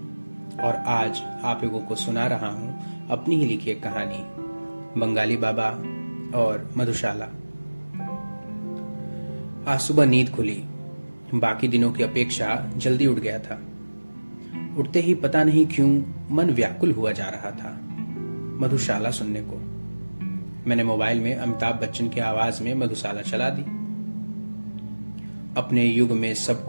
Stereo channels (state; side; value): inverted; both; correlation -1.00